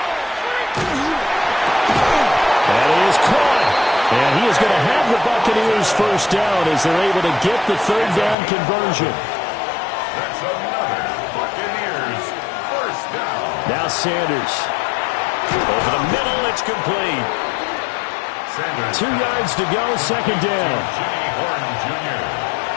That is caught. And he is going to have the Buccaneers first down as they're able to get the 3rd down conversion. That's another Buccaneers first down. Now Sanders. Over the middle, it's complete. Sanders 2 yards to go, 2nd down. Jimmy Horn Jr.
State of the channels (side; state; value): right; drops out; at 8.3 s